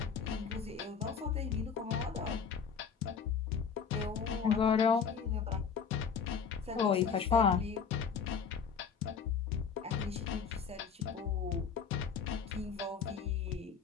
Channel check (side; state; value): right; quieter; 6.4 dB